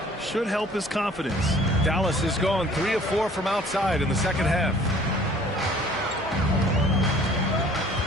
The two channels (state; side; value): normal; both; correlation 0.53